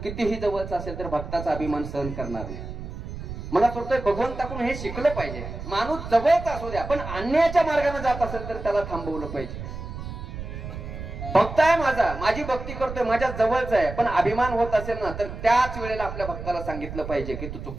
कितीही जवळचा असेल तर भक्ताचा अभिमान सहन करणार नाही. मला वाटतंय भगवंताकडून हे शिकलं पाहिजे. माणूस जवळचा असू द्या पण अन्यायाच्या मार्गाने जात असेल तर त्याला थांबवलं पाहिजे. भक्त आहे माझा, माझी भक्ती करतोय, माझ्या जवळचा आहे, पण अभिमान होत असेल ना तर त्याच वेळेला आपल्या भक्ताला सांगितलं पाहिजे की तू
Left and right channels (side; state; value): right; noise; rumble, 9 dB below the sound